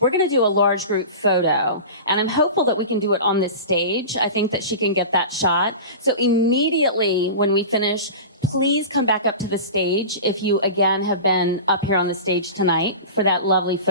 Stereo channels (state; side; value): inverted; both; correlation -0.31